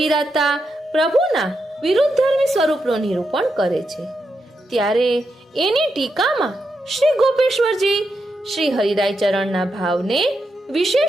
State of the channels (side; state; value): both; normal; correlation 0.84